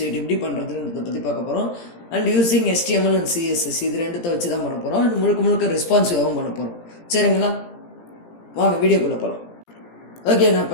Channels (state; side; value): late; right; 17 ms